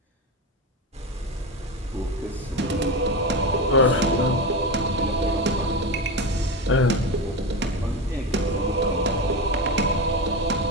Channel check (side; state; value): both; normal; correlation 0.20